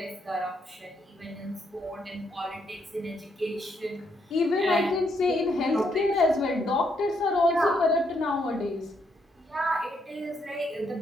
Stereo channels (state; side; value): normal; both; correlation 0.75